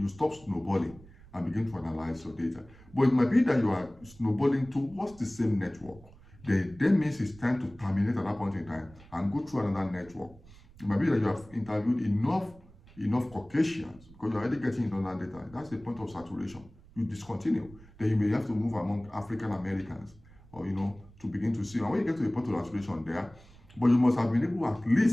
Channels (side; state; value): right; noise; rumble, 23 dB below the sound